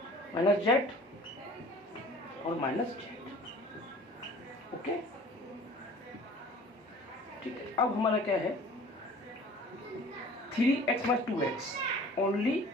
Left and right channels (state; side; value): normal; both; correlation 0.47